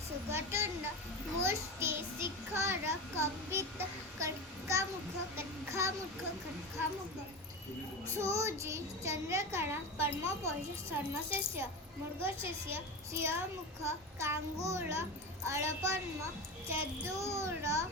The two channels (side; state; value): both; normal; correlation 0.23